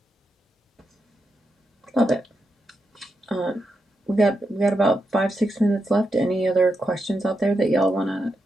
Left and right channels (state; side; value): normal; both; correlation 0.85